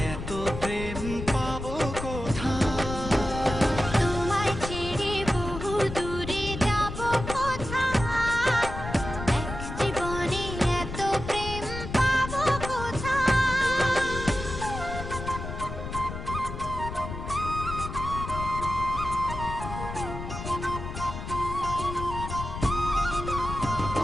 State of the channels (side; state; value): left; noise; rumble, 7 dB below the sound